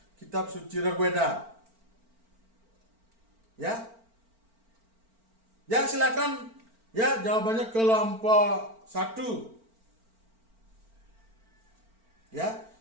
suci Rigveda? Ya, ya silakan. Ya, jawabannya kelompok 1. Ya,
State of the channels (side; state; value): left; late; 4.4 ms